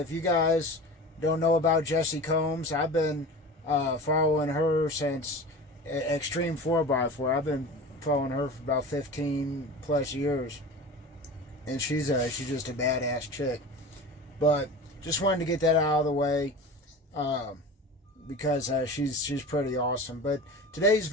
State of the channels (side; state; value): both; normal; correlation 0.34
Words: you guys don't know about Jessie Combs, I've been following her since Extreme 4x4. I've been following her for about 15 plus years, and she's just a badass chick. But just wanted to get that out of the way because she's pretty awesome. But today's